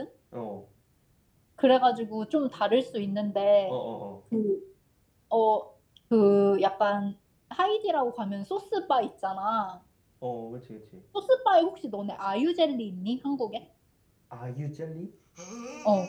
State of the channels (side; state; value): both; identical; correlation 1.00